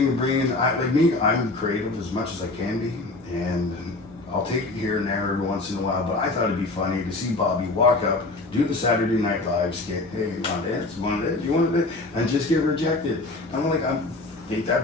bringing. Like me, I'm creative as much as I can be, and I'll take it here and there every once in a while. But I thought it'd be funny to see Bobby walk up, do the Saturday Night Live skit. Hey, you want to dance? You want to dance? You want to dance? And just get rejected. I'm like, I think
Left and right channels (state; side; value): quieter; right; 3.1 dB